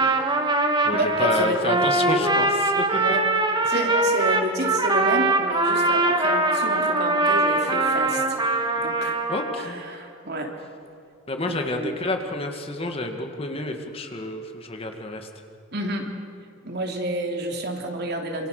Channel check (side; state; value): both; normal; correlation 0.11